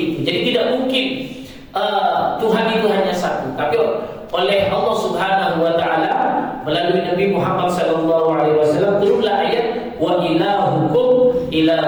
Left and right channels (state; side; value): identical; both; correlation 1.00